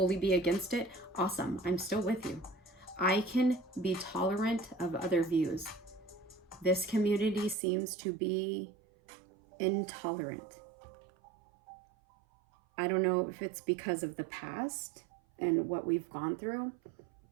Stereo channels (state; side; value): drops out; left; at 7.6 s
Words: be against it. Awesome, I'm still with you. I can be tolerant of other views. This community seems to be intolerant. don't know if it's because of the past and what we've gone through,